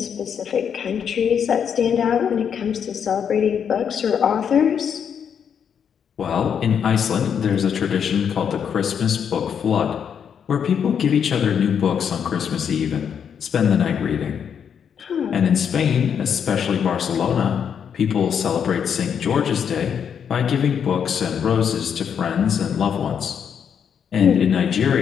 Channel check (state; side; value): quieter; right; 7.7 dB